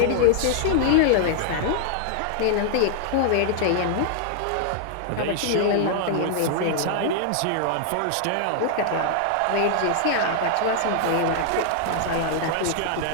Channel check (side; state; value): both; different; correlation -0.01